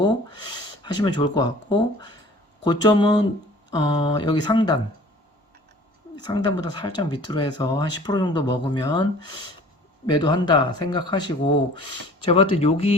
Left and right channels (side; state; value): both; normal; correlation 0.48